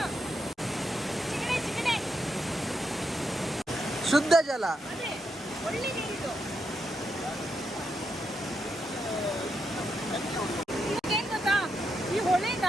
ಶುದ್ಧ ಜಲ. ಏನ್ ಗೊತ್ತಾ, ಈ ಹೊಳೆ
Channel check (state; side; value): normal; both; correlation 0.82